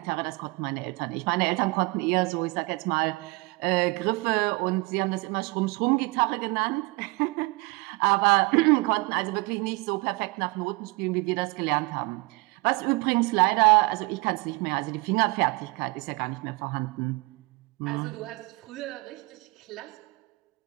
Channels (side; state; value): left; quieter; 25.4 dB